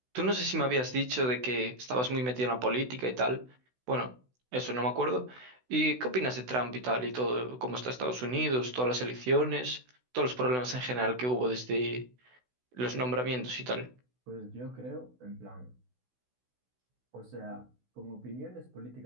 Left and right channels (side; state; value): left; late; 16 ms